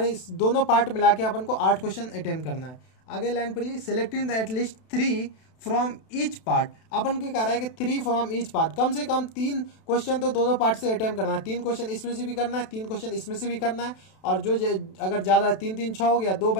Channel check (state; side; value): late; right; 32 ms